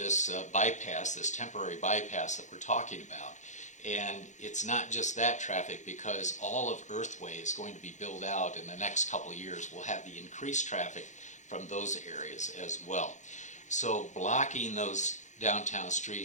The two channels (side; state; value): right; late; 0.35 ms